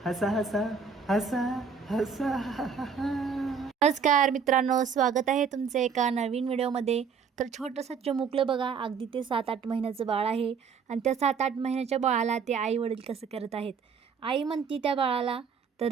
हसा हसा हसा हसा. नमस्कार मित्रांनो, स्वागत आहे तुमचं एका नवीन व्हिडिओमध्ये. तर छोटंसं चिमुकलं बघा, अगदी ते 7-8 महिन्याचं बाळ आहे. आणि त्या 7-8 महिन्याच्या बाळाला ते आई वडील कसं करत आहेत. आई म्हणती त्या बाळाला तर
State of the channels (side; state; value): left; quieter; 6.1 dB